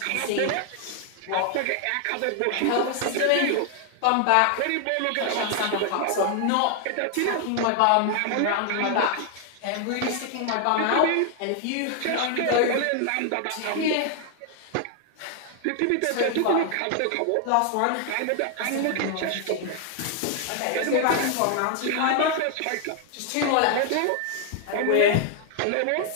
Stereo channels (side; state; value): both; different; correlation 0.00